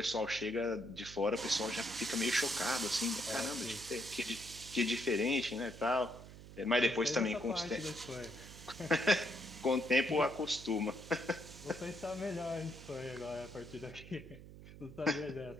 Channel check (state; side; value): noise; right; hum, 16 dB below the sound